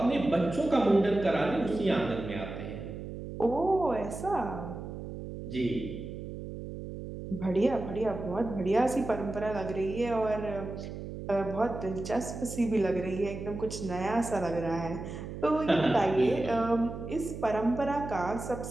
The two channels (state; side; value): noise; right; hum, 9 dB below the sound